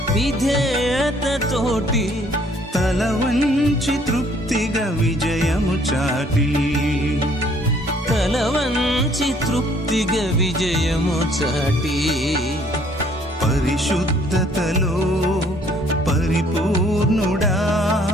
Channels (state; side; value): normal; both; correlation 0.61